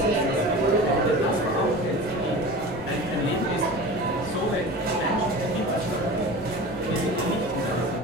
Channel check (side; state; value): both; normal; correlation 0.34